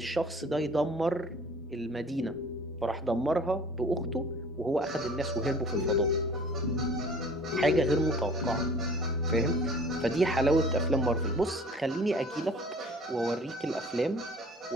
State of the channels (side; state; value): both; normal; correlation 0.48